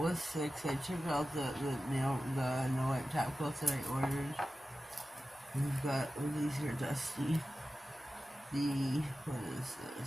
6. I took out the no white top coats that I ordered. We've got these here dusty. What is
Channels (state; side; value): normal; both; correlation 0.94